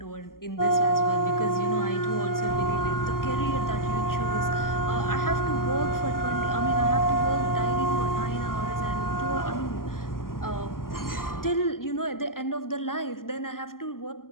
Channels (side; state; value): right; late; 0.91 ms